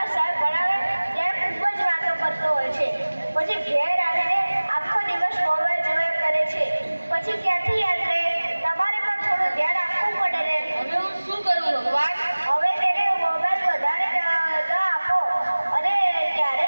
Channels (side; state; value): both; inverted; correlation -1.00